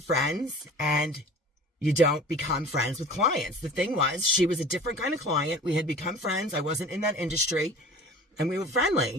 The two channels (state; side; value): normal; both; correlation 0.42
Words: friends and you don't become friends with clients. The thing was, she was a different kind of client. We had become friends. I wasn't in that industry and we were